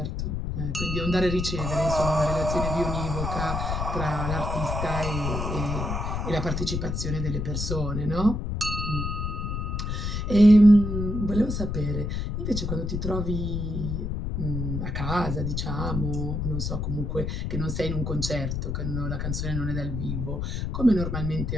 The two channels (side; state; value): left; noise; rumble, 2 dB below the sound